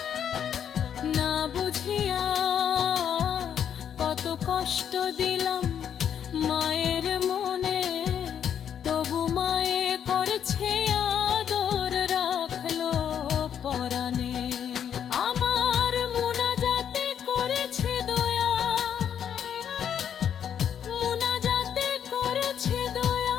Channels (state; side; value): quieter; right; 8.8 dB